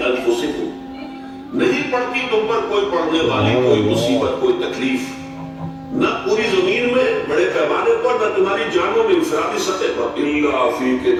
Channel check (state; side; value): identical; both; correlation 1.00